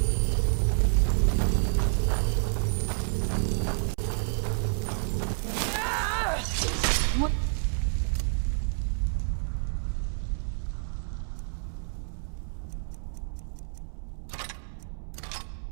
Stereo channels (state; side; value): silent; left; 59 dB below the other